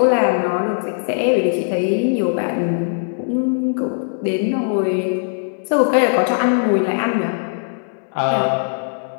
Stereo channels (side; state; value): right; silent; digital silence